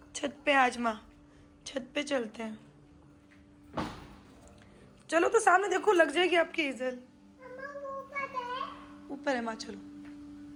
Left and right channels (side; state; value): both; identical; correlation 1.00